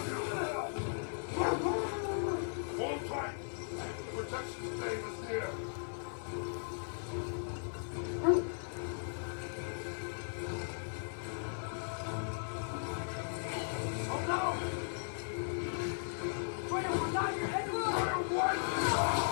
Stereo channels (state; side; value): silent; right; digital silence